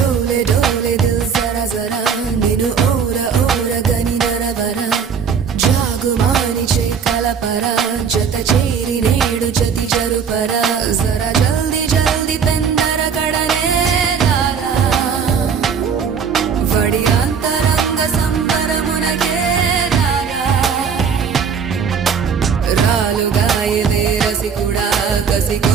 डोले दिल जरा जरा निनु ओरा ओरा गनी नरवरा जागुमानी कलपरा जत चेरी नेडु जति जरुपरा जरा जल्दी जल्दी पेंदर कड़ने लाला वड़ी अंतरंग संबर मुनके लाला रालु गाये रसिकुड़ा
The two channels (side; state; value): left; quieter; 6.6 dB